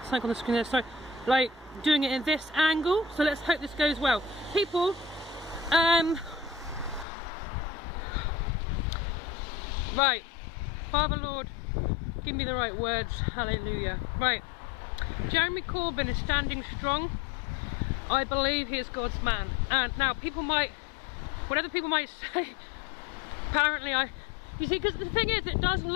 Something on the screen there, sorry. Like doing it in this angle, so let's hope this goes well. People, right, Father Lord, give me the right words, hallelujah. Right, Jeremy Corbyn is standing strong. I believe he is God's man. And now people might, whatever people might say, apparently you see, because the thing is, it does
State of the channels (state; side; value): drops out; right; at 7.1 s